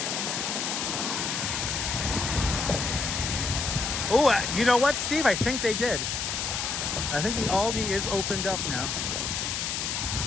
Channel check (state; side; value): noise; left; hiss, 1 dB below the sound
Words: Oh, you know what, Steve? I think they did. I think the Aldi is opened up now.